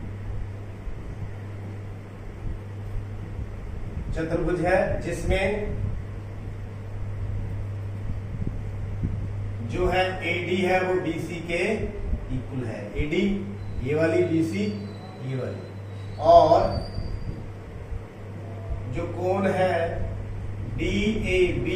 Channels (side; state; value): both; identical; correlation 1.00